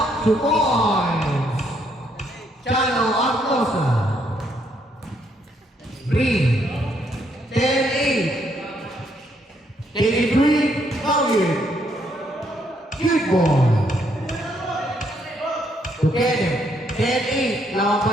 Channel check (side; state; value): both; normal; correlation 0.72